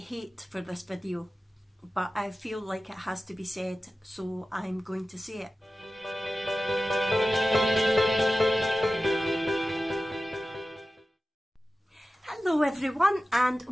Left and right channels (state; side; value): normal; both; correlation 0.95